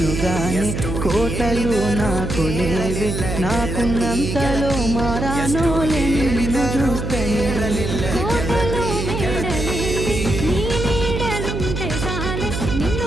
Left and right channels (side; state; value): right; noise; hum, 4 dB below the sound